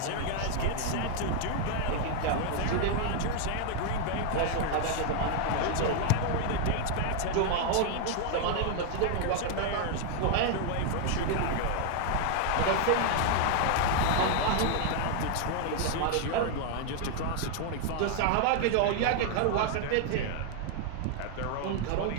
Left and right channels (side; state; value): both; different; correlation 0.00